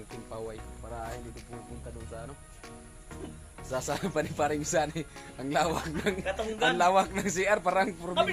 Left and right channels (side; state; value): both; identical; correlation 1.00